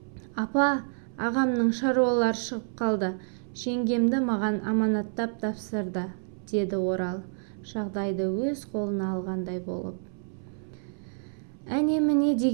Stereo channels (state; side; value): silent; left; 59 dB below the other